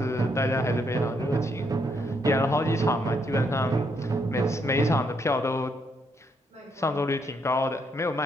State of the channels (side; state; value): both; normal; correlation 0.75